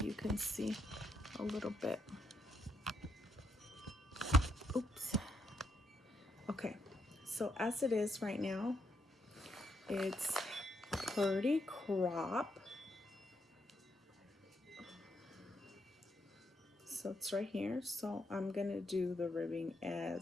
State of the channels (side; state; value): both; normal; correlation 0.78